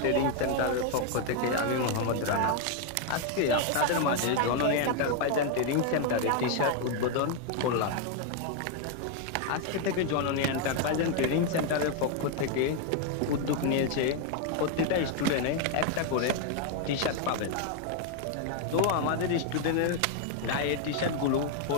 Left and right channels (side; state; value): both; different; correlation 0.01